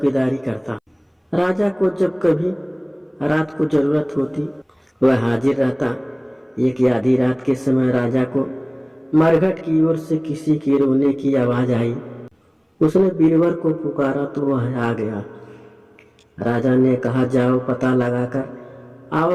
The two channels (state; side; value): identical; both; correlation 1.00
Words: करता। राजा को जब कभी रात को जरूरत होती वह हाजिर रहता। एक आधी रात के समय राजा को मरघट की ओर से किसी के रोने की आवाज आई। उसने बीरबल को पुकारा तो वह आ गया। राजा ने कहा जाओ पता लगाकर